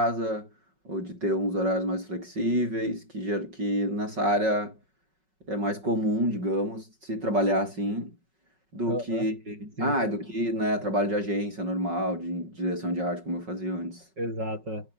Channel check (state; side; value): late; left; 5.4 ms